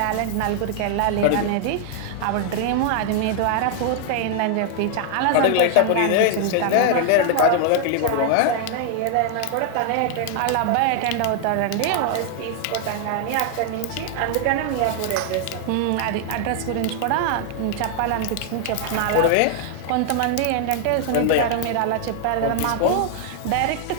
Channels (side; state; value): both; different; correlation 0.00